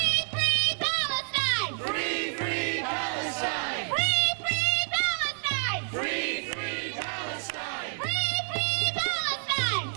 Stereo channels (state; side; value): silent; left; 59 dB below the other